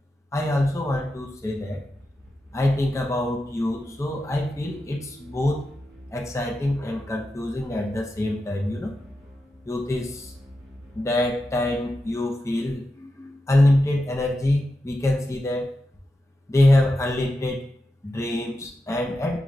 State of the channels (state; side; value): normal; both; correlation 0.89